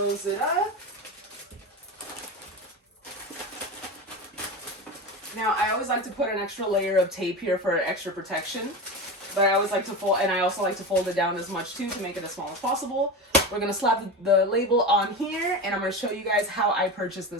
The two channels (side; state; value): both; normal; correlation 0.24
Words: it up. Now I always like to put an extra layer of tape here for extra protection. But I always like to fold, and I also like to fold it down as much too to make it as small as possible. We're gonna slap the label on here, and I'm gonna show you guys how I purchased